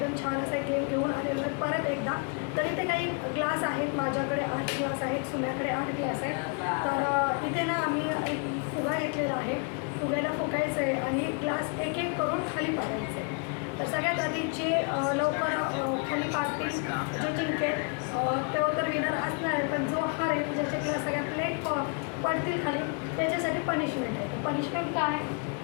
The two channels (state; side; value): quieter; right; 37.2 dB